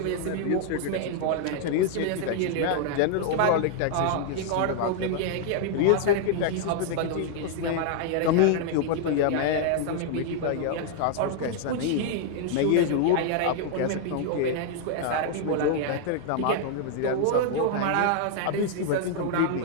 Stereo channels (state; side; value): different; both; correlation 0.00